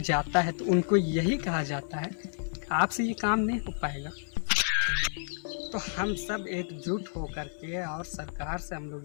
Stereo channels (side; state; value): right; silent; 57 dB below the other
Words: जाता है तो उनको यही कहा जाता है आपसे ये काम नहीं हो पाएगा। तो हम सब एकजुट होकर के और सरकार से हम